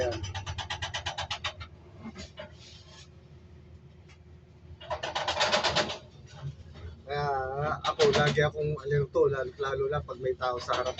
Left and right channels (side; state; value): both; identical; correlation 1.00